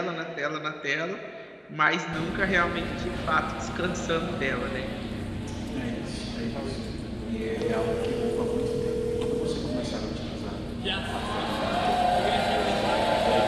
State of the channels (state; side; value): identical; both; correlation 1.00